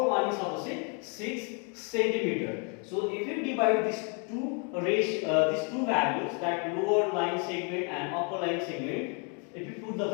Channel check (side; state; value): right; quieter; 37.2 dB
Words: one is suppose 6 cm. So if you divide these two values, that lower line segment and upper line segment, if you put the